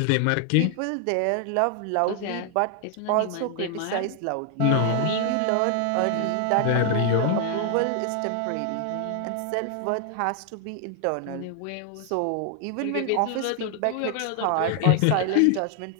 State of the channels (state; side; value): different; both; correlation 0.00